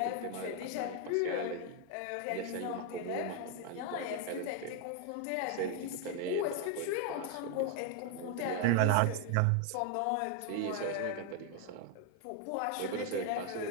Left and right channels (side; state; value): both; different; correlation 0.01